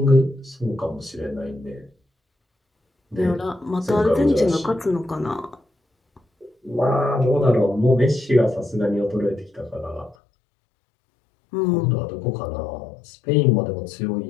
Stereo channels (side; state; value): right; drops out; at 10.2 s